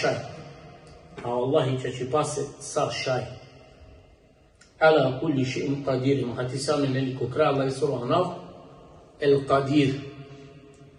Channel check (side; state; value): both; identical; correlation 1.00